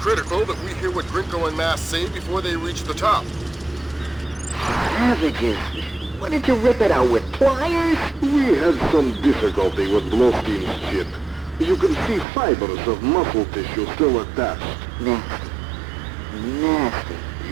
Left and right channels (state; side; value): drops out; left; at 12.2 s